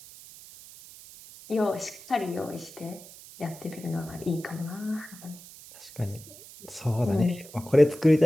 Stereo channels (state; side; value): noise; right; hiss, 18 dB below the sound